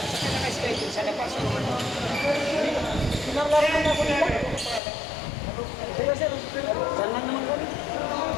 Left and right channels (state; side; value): drops out; right; at 4.8 s